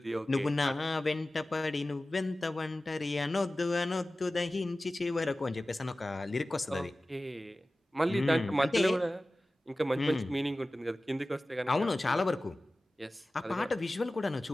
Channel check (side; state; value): both; normal; correlation 0.96